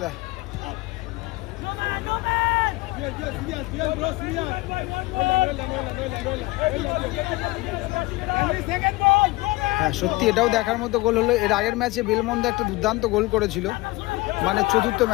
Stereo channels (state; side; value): quieter; right; 21.4 dB